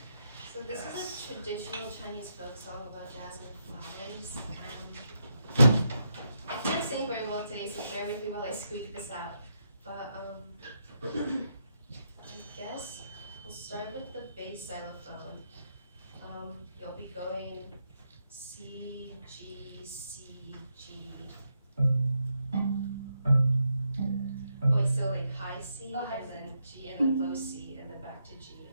So this is a traditional Chinese folk song about jasmine flowers. I can't sing very well today, so bear with me while I squeak this out. But I guess we'll start with the bass xylophone. You'll be going C, G, C, G. Wait, so like high C, Oh, high and C. then G, and then low C, and then back to G,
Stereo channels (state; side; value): inverted; both; correlation -0.81